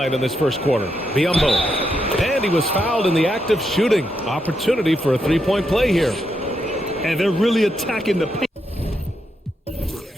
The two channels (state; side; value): normal; both; correlation 0.81